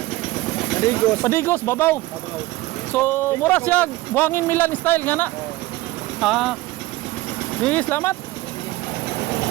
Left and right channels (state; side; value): quieter; left; 18.5 dB